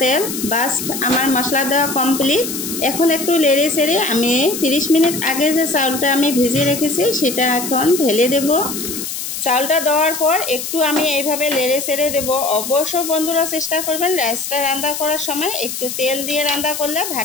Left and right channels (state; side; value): noise; left; hiss, 6 dB below the sound